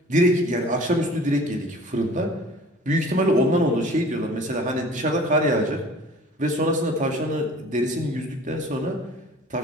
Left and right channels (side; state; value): both; normal; correlation 0.47